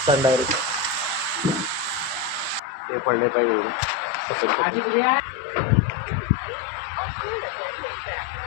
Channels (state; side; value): drops out; right; at 2.6 s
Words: डायरेक्ट. ते पडले काही एवढे